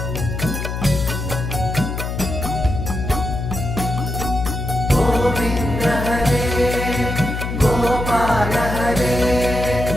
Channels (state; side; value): noise; left; hum, 4 dB below the sound